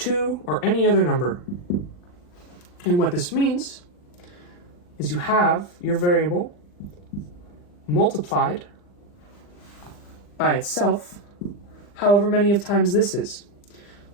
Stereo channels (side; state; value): right; late; 40 ms